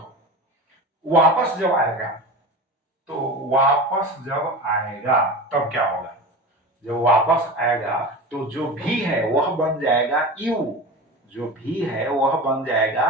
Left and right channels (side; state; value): both; normal; correlation 0.30